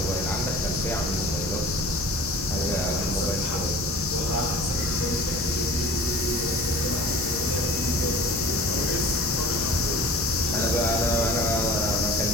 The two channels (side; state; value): both; normal; correlation 0.41